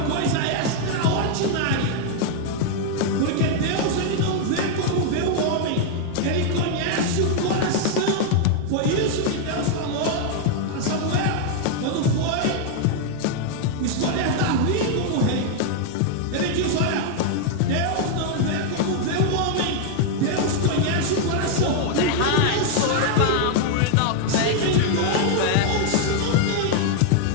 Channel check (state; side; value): different; both; correlation 0.00